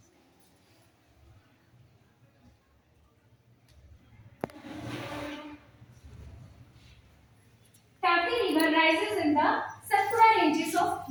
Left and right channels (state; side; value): identical; both; correlation 1.00